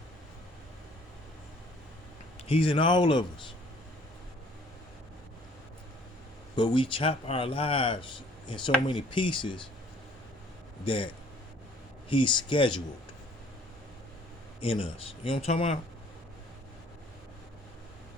He's in all of us. But we chop our lives in so many pieces that he's scheduled in us. You know what I'm talking about?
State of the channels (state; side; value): normal; both; correlation 0.57